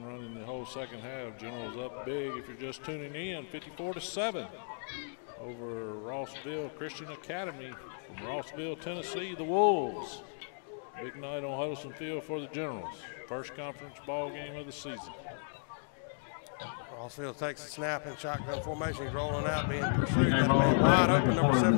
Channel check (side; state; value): right; silent; digital silence